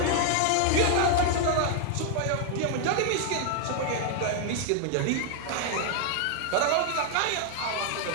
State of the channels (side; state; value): both; different; correlation 0.00